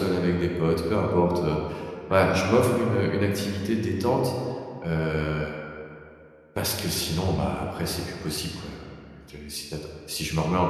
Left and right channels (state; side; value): identical; both; correlation 1.00